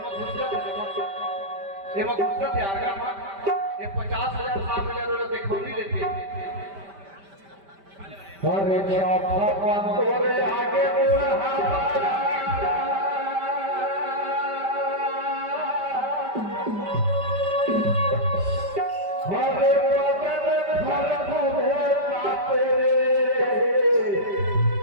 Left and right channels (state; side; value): late; left; 5.1 ms